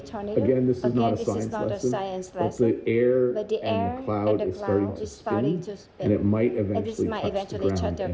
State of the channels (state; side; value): identical; both; correlation 1.00